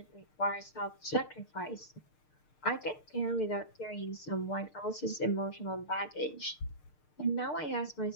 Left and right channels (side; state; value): right; late; 6.6 ms